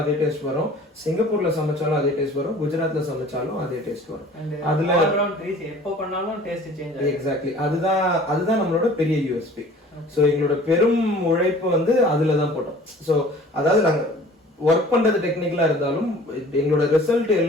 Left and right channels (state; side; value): normal; both; correlation 0.48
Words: அதே டேஸ்ட் வரும், சிங்கப்பூர்ல சமைச்சாலும் அதே டேஸ்ட் வரும், குஜராத்ல சமைச்சாலும் அதே டேஸ்ட் வரும். அதுல எப்போ பண்ணாலும் டேஸ்ட் சேஞ்ச். எக்ஸாக்ட்லி, அதுதான் நம்மளோட பெரிய யூஎஸ்பி. ஸோ எங்களோட பெரும் உழைப்பு வந்து அதுல தான் போட்டோம். ஸோ அதாவது நாங்க ஒர்க் பண்றது டெக்னிக்கலா இருந்தாலும் எங்களோட ரிசல்ட்